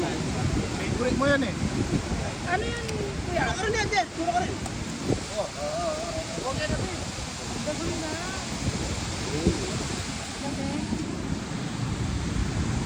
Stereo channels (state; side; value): identical; both; correlation 1.00